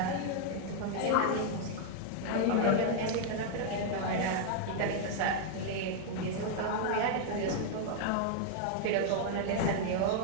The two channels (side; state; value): both; different; correlation 0.00